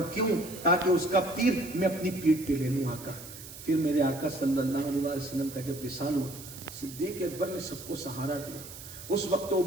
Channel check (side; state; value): right; noise; hiss, 14 dB below the sound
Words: کیوں؟ تاکہ اس کا تیر میں اپنی پیٹھ پہ لے لوں. آقا پھر میرے آقا صلی اللہ علیہ وسلم کا جب وصال ہوا, صدیق اکبر نے سب کو سہارا دیا. اس وقت تو